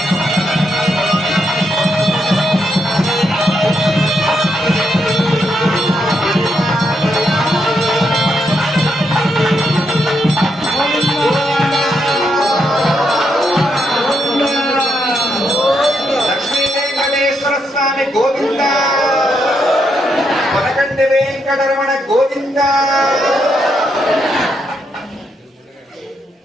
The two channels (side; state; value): both; normal; correlation 0.80